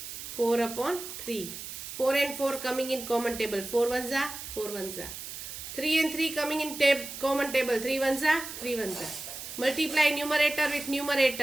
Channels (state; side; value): noise; right; hiss, 9 dB below the sound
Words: 4 upon 3. 4 and 4 coming in common table. 4 ones are 4 ones are. 3 and 3 coming in common table. 3 ones are 3 ones are. Multiply numerator with